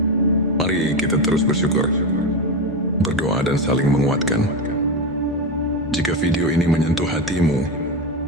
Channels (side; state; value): both; normal; correlation 0.15